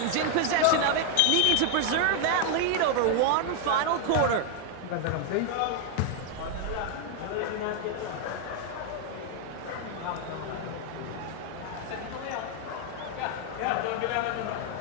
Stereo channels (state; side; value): different; both; correlation 0.01